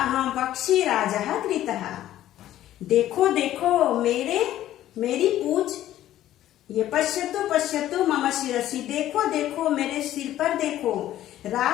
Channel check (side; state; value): right; quieter; 13.1 dB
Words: पक्षी राजः कृतः। देखो देखो मेरी पूछ, ये पश्यतु पश्यतु मम शिरसि, देखो देखो मेरे सिर पर देखो,